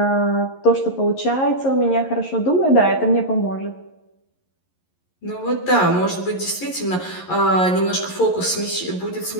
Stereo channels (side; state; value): right; late; 11 ms